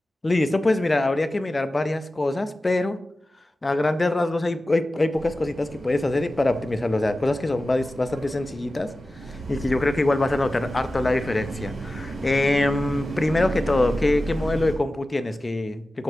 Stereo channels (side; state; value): both; normal; correlation 0.95